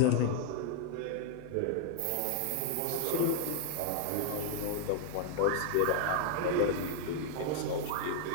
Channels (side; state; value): both; different; correlation 0.00